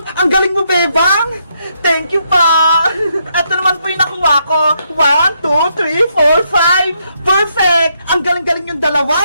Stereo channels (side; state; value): both; inverted; correlation -0.77